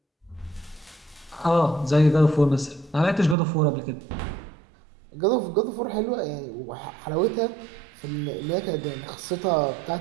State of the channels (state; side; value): drops out; left; at 3.4 s